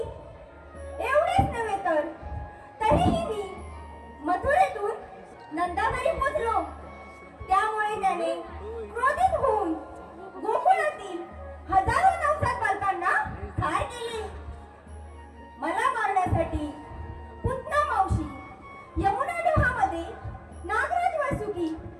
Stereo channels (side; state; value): both; identical; correlation 1.00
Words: एवढेच नव्हे तर तरीही मी मथुरेतून नंदाघरी पोचलो. त्यामुळे त्याने क्रोधित होऊन गोकुळातील हजारो नवजात बालकांना ठार केले. मला मारण्यासाठी पुतना मावशी, यमुना डोहामध्ये नागराज वासुकी